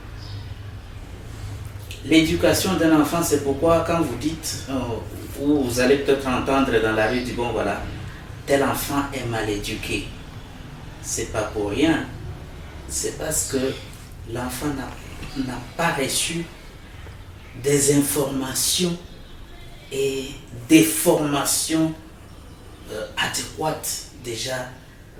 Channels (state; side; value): identical; both; correlation 1.00